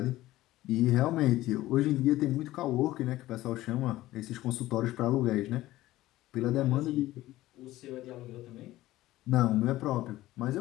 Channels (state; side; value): quieter; right; 16.2 dB